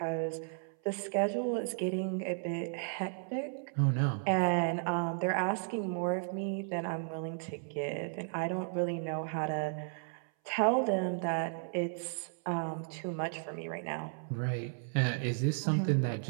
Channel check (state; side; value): silent; left; 55 dB below the other